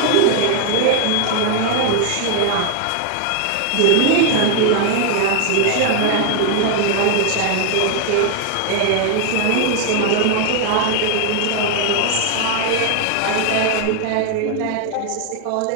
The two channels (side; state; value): both; different; correlation 0.00